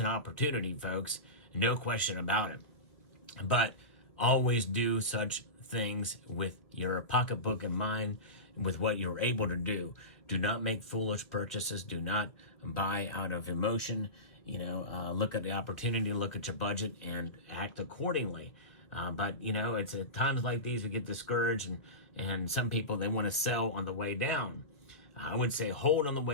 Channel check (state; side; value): late; right; 1.6 ms